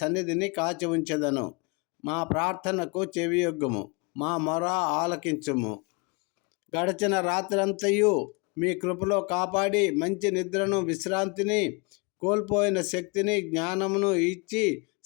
కాచి ఉంచెదను. మా ప్రార్థనకు చెవియొగ్గుము, మా మొర ఆలకించుము. గడిచిన రాత్రంతయు మీ కృపలో కాపాడి మంచి నిద్రను, విశ్రాంతిని, కోల్పోయిన శక్తిని, జ్ఞానమును ఇచ్చి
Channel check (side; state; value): right; quieter; 30.2 dB